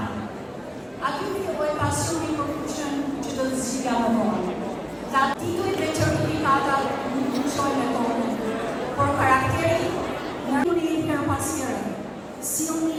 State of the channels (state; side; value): identical; both; correlation 1.00